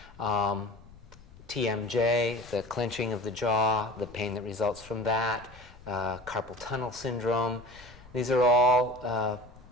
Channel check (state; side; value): noise; left; rumble, 21 dB below the sound